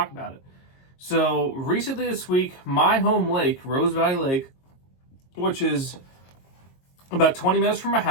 about it. So, recently this week, my home lake, Rose Valley Lake, which is about 20 minutes from my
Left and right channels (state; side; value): late; right; 22 ms